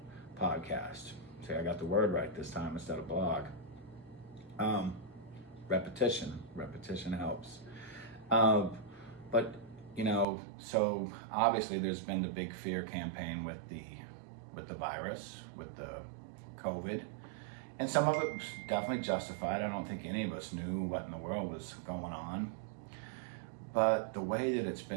podcast. See, I got the word right this time instead of blog. Repetition helps. But so obviously there's been the big fear campaign with the virus, with the COVID, and some of it was definitely justified. I don't think any of us knew what in the world was going on, but the way that it's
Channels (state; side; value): drops out; left; at 10.2 s